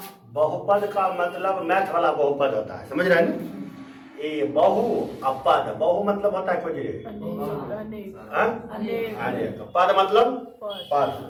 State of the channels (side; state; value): both; identical; correlation 1.00